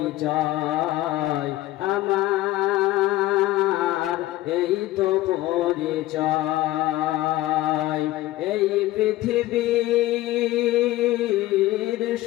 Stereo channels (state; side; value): quieter; right; 16.4 dB